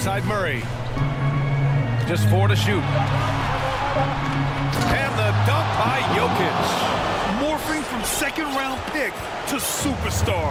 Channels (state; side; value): identical; both; correlation 1.00